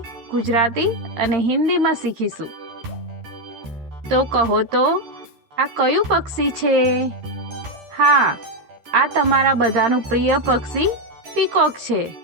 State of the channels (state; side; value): late; left; 13 ms